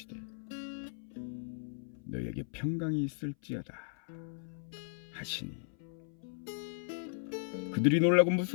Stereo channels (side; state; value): right; silent; 54 dB below the other